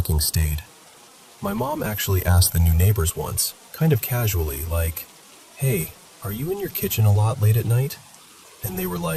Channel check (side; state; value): both; identical; correlation 1.00